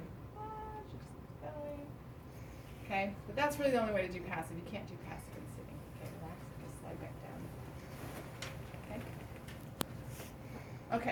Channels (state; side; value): identical; both; correlation 1.00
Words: She's going. Okay, but that's really the only way to do passive. You can't do passive in sitting. Okay, relax. Just slide back down. Okay.